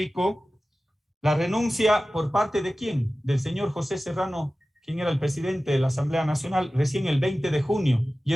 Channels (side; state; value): both; normal; correlation 0.96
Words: la renuncia por parte de ¿quién? Del señor José Serrano, quien era el presidente de la Asamblea Nacional, recién el 20 de junio, y